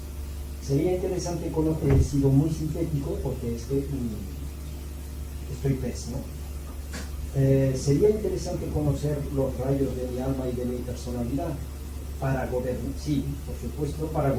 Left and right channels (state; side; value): identical; both; correlation 1.00